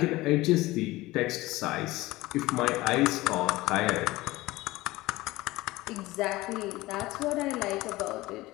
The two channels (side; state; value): right; quieter; 19.0 dB